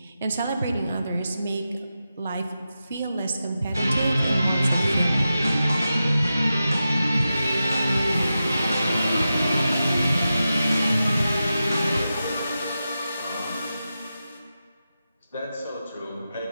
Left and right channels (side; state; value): both; inverted; correlation -0.91